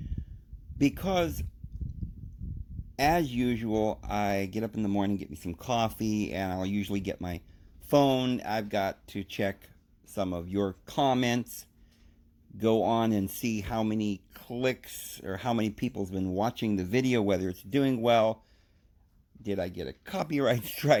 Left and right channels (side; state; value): both; identical; correlation 1.00